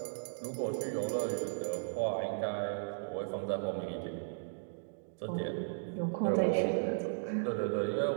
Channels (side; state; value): left; silent; digital silence